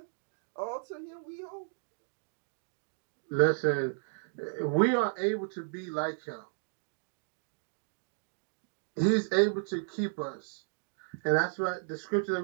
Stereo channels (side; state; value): left; silent; digital silence